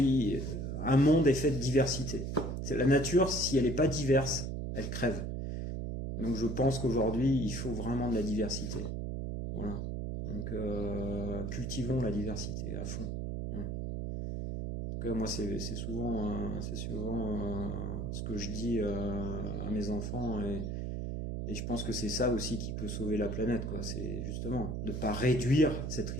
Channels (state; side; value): noise; right; hum, 3 dB below the sound